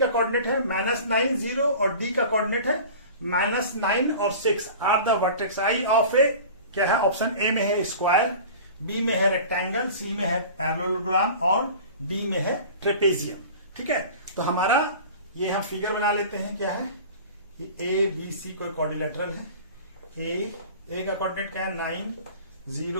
कोऑर्डिनेट है -9 0 और डी का कोऑर्डिनेट है -9 और 6 are the vertex I of A. क्या है? ऑप्शन ए में है स्क्वायर, बी में है रेक्टेंगल, सी में है पैरेललोग्राम और डी में है ट्रेपेजियम। ठीक है। तो हमारा ये हम फिगर बना लेते हैं। क्या है? ये ए बी सी कोई क्वाड्रिलेटरल है। ए का कोऑर्डिनेट क्या है 9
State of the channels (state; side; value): inverted; both; correlation -0.39